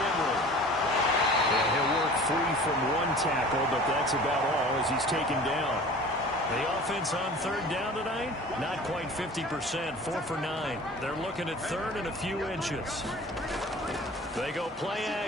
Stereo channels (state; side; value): normal; both; correlation 0.43